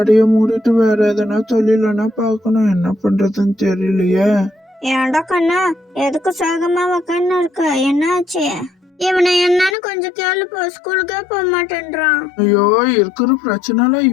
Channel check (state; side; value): drops out; right; at 9.8 s